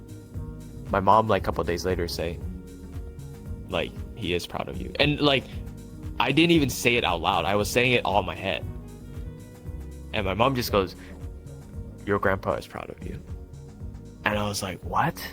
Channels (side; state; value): both; identical; correlation 1.00